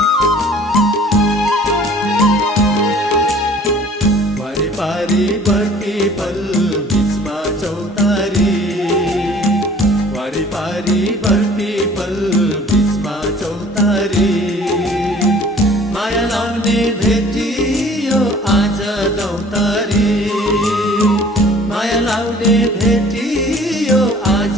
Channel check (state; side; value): normal; both; correlation 0.51